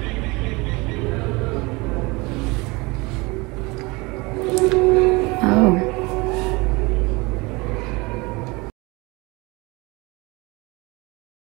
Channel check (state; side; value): quieter; left; 25.0 dB